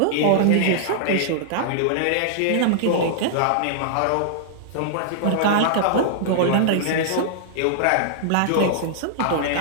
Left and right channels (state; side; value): different; both; correlation -0.01